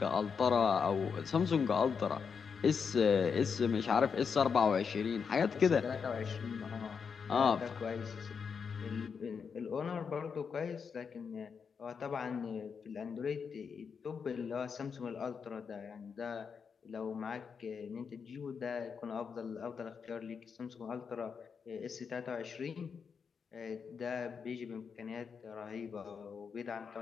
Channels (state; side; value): quieter; right; 6.1 dB